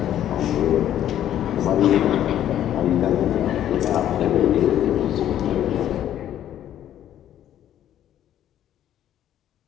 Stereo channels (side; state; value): right; quieter; 11.3 dB